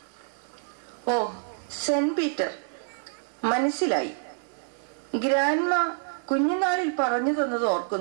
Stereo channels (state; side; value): silent; left; digital silence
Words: ഓ, സെന്റ് പീറ്റർ, മനസ്സിലായി. ഗ്രാൻഡ്മ കുഞ്ഞുനാളിൽ പറഞ്ഞു തന്നത്